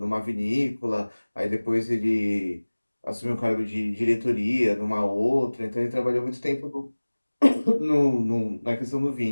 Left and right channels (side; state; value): both; inverted; correlation -1.00